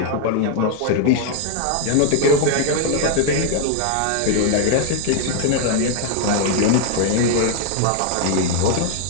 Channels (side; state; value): both; different; correlation 0.00